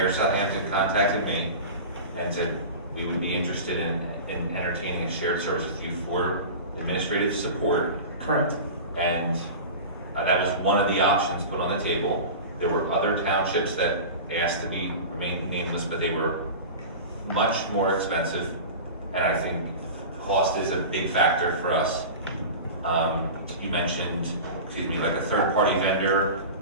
of Southampton contacted me and said we would be interested in entertaining a shared service with you for administrative support. Correct. And that was one of the options put on the table. There were other townships that asked to remain nameless, but they were much more expensive. And I think cost is a big factor for us. You mentioned, like a third-party vendor.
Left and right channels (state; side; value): inverted; both; correlation -0.31